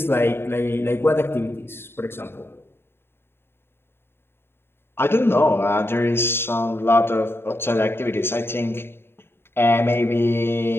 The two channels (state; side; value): late; right; 0.11 ms